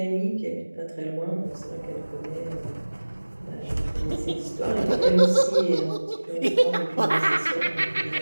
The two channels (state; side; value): inverted; both; correlation -1.00